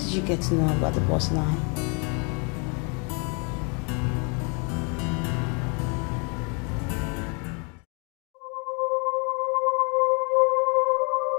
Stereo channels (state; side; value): quieter; right; 35.4 dB